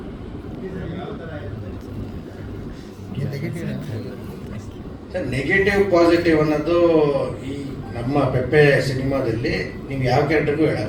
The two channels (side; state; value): both; identical; correlation 1.00